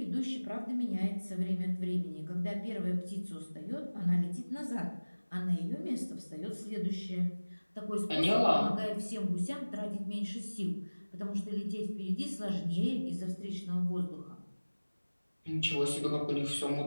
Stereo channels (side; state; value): both; inverted; correlation -1.00